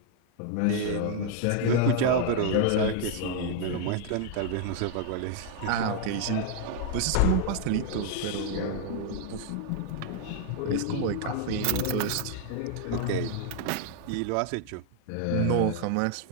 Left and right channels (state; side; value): different; both; correlation 0.00